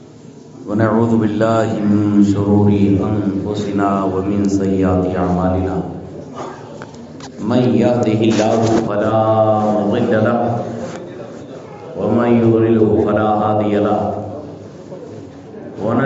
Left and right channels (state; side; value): identical; both; correlation 1.00